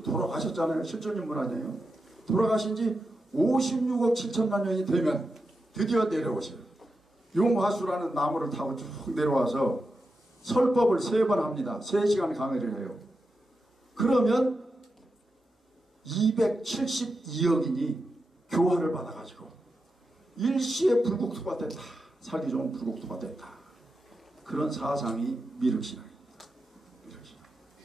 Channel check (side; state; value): both; normal; correlation 0.88